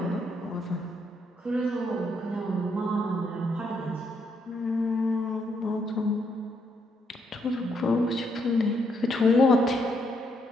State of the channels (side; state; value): both; normal; correlation 0.75